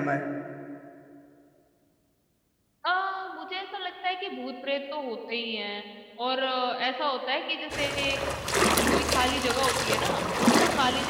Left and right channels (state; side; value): identical; both; correlation 1.00